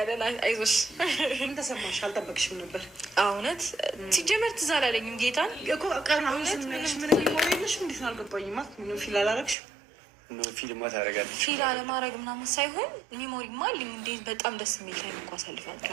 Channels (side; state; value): left; drops out; at 9.6 s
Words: አይዞሽ። ምን ተሰማሽ? አልጠበቅሽም ነበር? እውነት ሲጀመር ትዝ አላለኝም። ጌታን እኮ ቀን አሁን ስንነግርሽ ምን ሊሞር የለሽ እንዴት ነው አልገባኝም። ምንም ፊል አላረግሽም? ፊልማ ታደርጋለች። ፊል አለማድረግ ምናምን ሳይሆን ሚሞሪማ አለኝ። እንዴት በጣም ደስ የሚል ላይ እንኳ